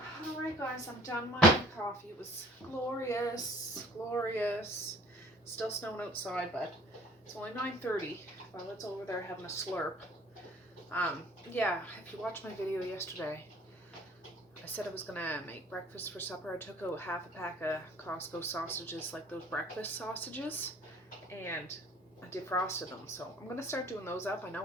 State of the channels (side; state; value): both; normal; correlation 0.52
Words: Alright guys, I'm done my coffee. It was glorious, glorious. Still snowing outside, but it's only 9:30. Violet's over there having a slurp. Yeah, if you watched my video yesterday, I said I was gonna make breakfast for supper. I took out half a pack of Costco sausages, like those breakfast sausages, and I defrosted them. So I'm gonna start doing those up. I